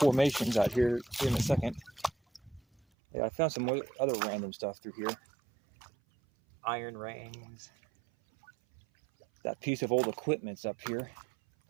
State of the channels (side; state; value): left; drops out; at 2.8 s